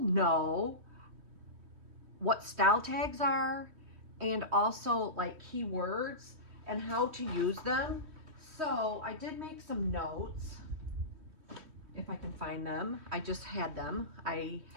what style tags are and also like keywords and how to use them? So I did make some notes. If I can find them, I just had them. I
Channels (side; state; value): left; late; 3.2 ms